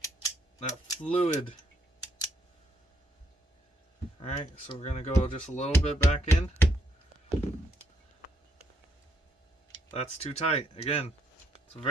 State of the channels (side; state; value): both; normal; correlation 0.74